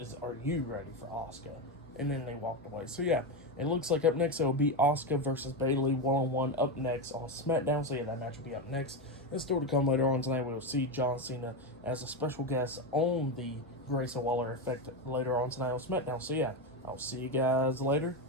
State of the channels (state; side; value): normal; both; correlation 0.13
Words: are you ready for Asuka? And then they walked away. So yeah, it looks like up next it will be Asuka versus Bayley one-on-one up next on SmackDown. So yeah, that match will be up next. And still to come later on tonight, we will see John Cena as a special guest on the Grayson Waller effect later on tonight on SmackDown. So yeah, I'll see you guys later.